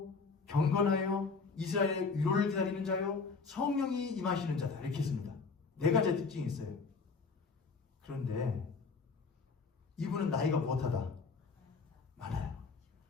경건하여 이스라엘의 위로를 기다리는 자요, 성령이 임하시는 자다. 이렇게 했습니다. 네 가지 특징이 있어요. 그런데 이분은 나이가 못하다. 많아요.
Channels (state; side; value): quieter; right; 4.6 dB